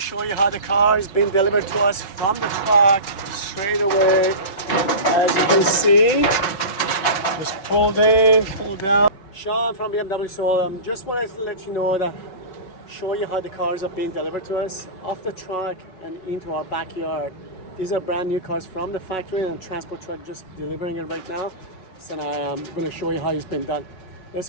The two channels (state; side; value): late; right; 5.4 ms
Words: you how the car is being delivered to us from the truck straight away. As you can see, just pulled in, pulled out. Sean from BMW. So just wanted to let you know that, show you how the cars are being delivered to us off the truck and into our backyard. These are brand new cars from the factory and transport truck just delivering it right now. So I'm going to show you how it's been done.